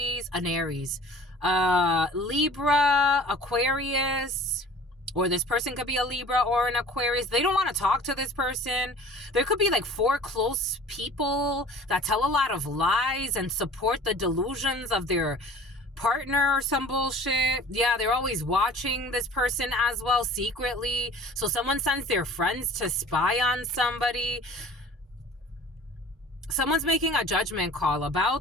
Libra, Aquarius, or this person could be a Libra or an Aquarius. They don't want to talk to this person. There could be like 4 close people that tell a lot of lies and support the delusions of their partner or some bullshit. Yeah, they're always watching this person as well secretly. So someone sends their friends to spy on somebody. Someone's making a judgment call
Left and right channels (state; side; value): normal; both; correlation 0.46